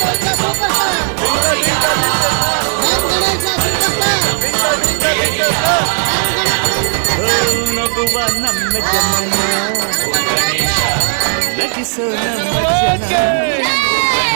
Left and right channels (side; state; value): left; silent; 65 dB below the other